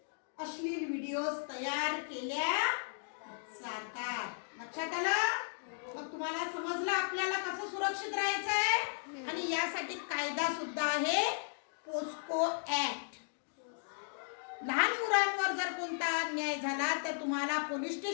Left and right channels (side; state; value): right; silent; digital silence